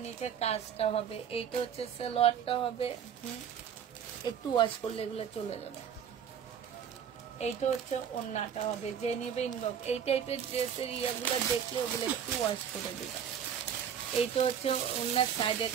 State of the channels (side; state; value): left; quieter; 8.3 dB